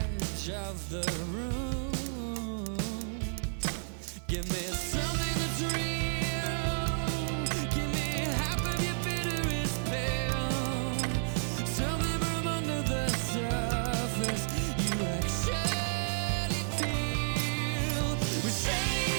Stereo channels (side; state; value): left; silent; 57 dB below the other